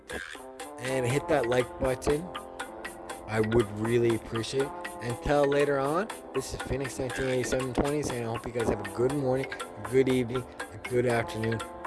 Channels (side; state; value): both; identical; correlation 1.00